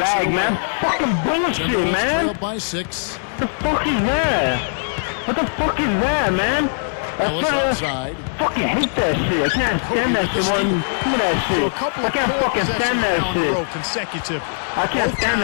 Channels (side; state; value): right; silent; 66 dB below the other